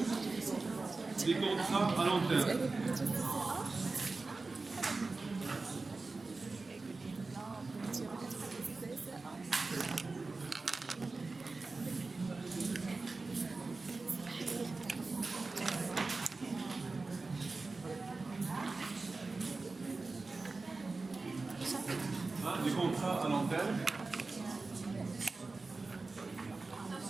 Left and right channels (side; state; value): left; quieter; 3.7 dB